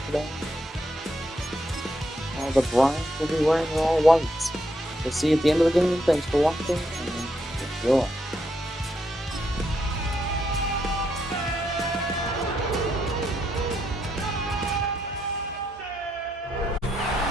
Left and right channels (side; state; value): both; normal; correlation 0.79